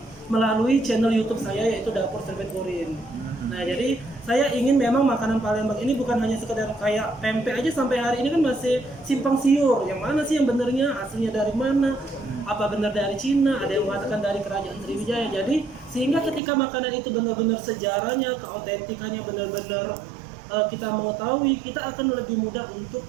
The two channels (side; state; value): left; drops out; at 16.4 s